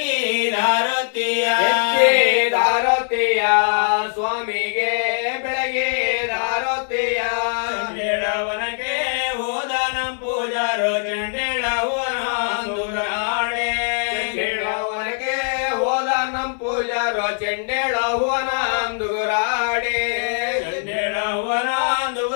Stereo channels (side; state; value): right; silent; digital silence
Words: ದಾರತಿಯ ಸ್ವಾಮಿಗೆ ಬೆಳಗಿದಾರತಿಯ ಚಂಡೇಳವನಕ್ಕೆ ಹೋದ ನಂ ಪೂಜಾರು ಚಂಡೇಳವನಾಡೆ ಚಂಡೇಳವನಕ್ಕೆ ಹೋದ ನಂ ಪೂಜಾರು ಚಂಡೇಳವನಾಂದುರಾಡೆ